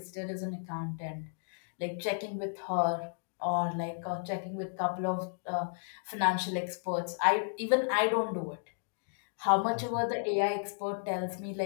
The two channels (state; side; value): silent; right; digital silence